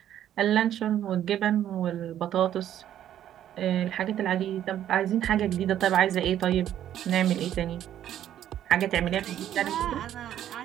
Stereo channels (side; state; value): left; quieter; 11.2 dB